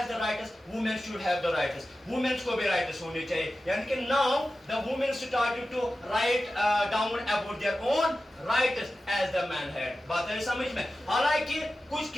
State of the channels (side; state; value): both; normal; correlation 0.94